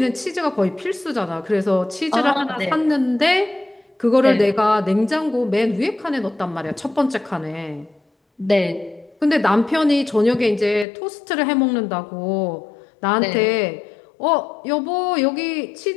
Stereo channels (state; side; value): drops out; right; at 10.9 s